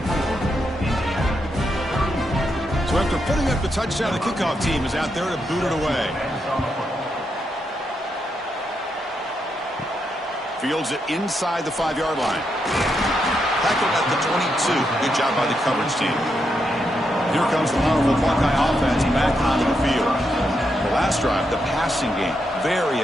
So after putting up the touchdown, the kickoff team is out there to boot it away. Fields it inside the 5-yard line. Tackled at the 22. Good job by the coverage team. Here comes the powerful Buckeye offense back onto the field. The last drive, the passing game,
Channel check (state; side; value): normal; both; correlation 0.82